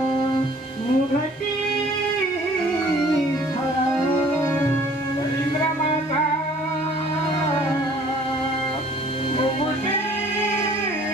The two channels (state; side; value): normal; both; correlation 0.54